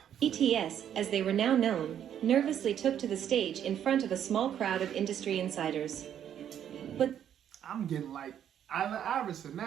BTS, as they were now known, nervously took to the stage in front of a small crowd of industry insiders. But I'm getting like Allen Iverson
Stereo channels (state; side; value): quieter; left; 9.7 dB